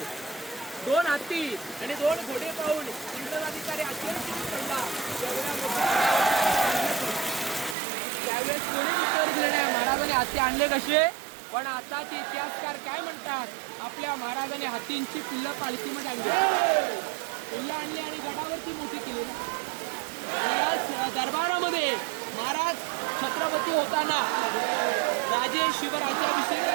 2 हत्ती आणि 2 घोडे पाहून इंग्रज अधिकारी आश्चर्यचकित पडला. त्यावेळेस कोणी उत्तर दिलं नाही महाराजांनी हत्ती आणले कसे. पण आता ते इतिहासकार काय म्हणतात, आपल्या महाराजांनी हत्तींची पिल्लं पालखीमध्ये आणली, पिल्लं आणली आणि गडावरती मोठी केली. या दरबारामध्ये महाराज छत्रपती होताना राजे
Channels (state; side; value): drops out; left; at 7.8 s